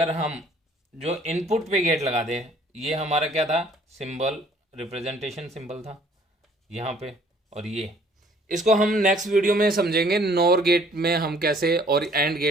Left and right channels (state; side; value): normal; both; correlation 0.58